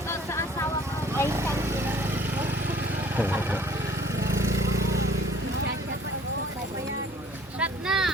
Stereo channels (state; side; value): normal; both; correlation 0.53